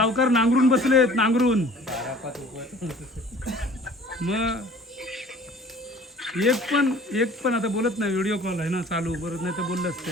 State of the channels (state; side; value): normal; both; correlation 0.49